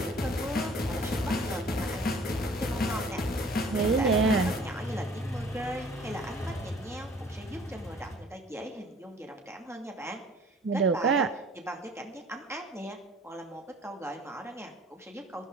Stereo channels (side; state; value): both; normal; correlation 0.53